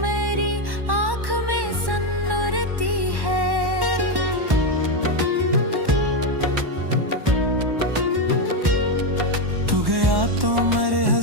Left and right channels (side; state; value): left; late; 1.1 ms